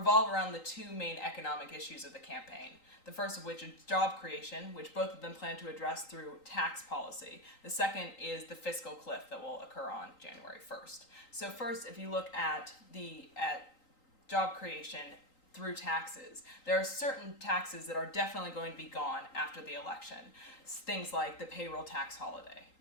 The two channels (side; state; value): right; late; 3.8 ms